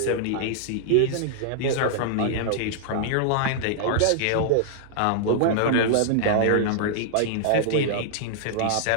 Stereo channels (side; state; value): both; different; correlation -0.01